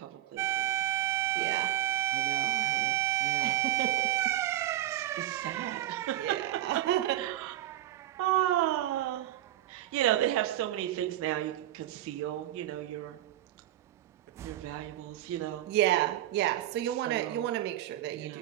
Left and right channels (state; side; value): quieter; left; 13.2 dB